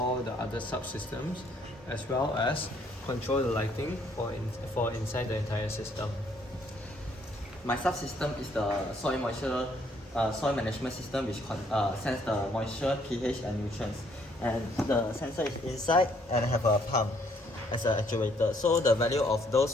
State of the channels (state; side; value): normal; both; correlation 0.66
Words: the other subsystems as well as control the lighting for inside the entire system. My subsystem is the soil moisture soil management system, which sense the moisture, pH, and nutrients. And the sensor is inside and have a pump as an actuator. So the value of those